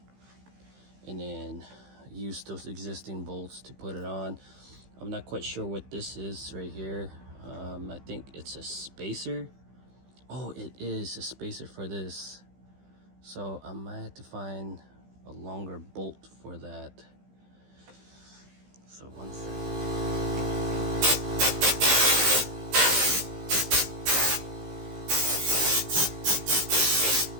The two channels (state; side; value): late; left; 15 ms